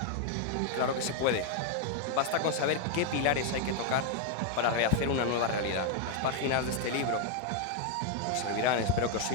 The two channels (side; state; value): both; different; correlation 0.01